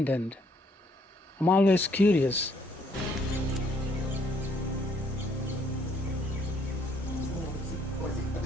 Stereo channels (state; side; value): normal; both; correlation 0.67